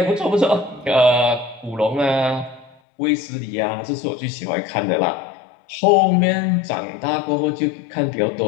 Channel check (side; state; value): right; drops out; at 2.7 s